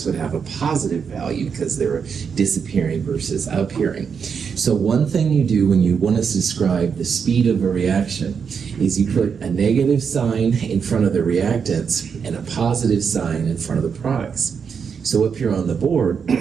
would have a positive value because they're disappearing versus appearing. So one thing you do when you want to describe the speed of a reaction is you put a negative sign in front of the reactants and a positive sign in front of the products. So up here on the board,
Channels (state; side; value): quieter; left; 6.4 dB